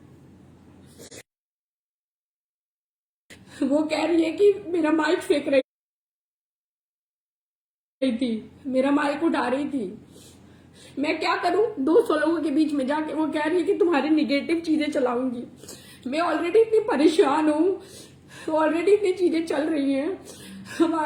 वो कह रही है कि मेरा माइक फेंक रही थी, मेरा माइक उठा रही थी। मैं क्या करूं 200 लोगों के बीच में जाके? वो कह रही है कि तुम्हारी निगेटिव चीजें चलाऊंगी। मैं ऑलरेडी इतनी परेशान हूं, ऑलरेडी इतनी चीजें चल रही हैं,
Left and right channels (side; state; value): both; identical; correlation 1.00